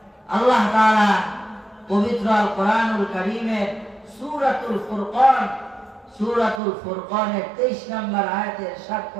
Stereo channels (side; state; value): left; drops out; at 6.6 s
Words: আল্লাহ তাআলা পবিত্র আল কোরআনুল কারীমের সূরাতুল ফুরকান, সূরাতুল ফুরকানের 23 নম্বর আয়াতে ইরশাদ